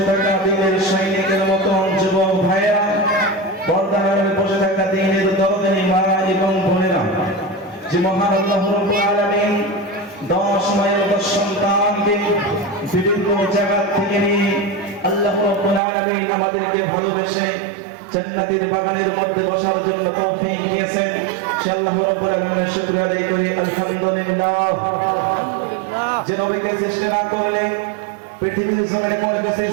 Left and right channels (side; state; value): left; drops out; at 15.8 s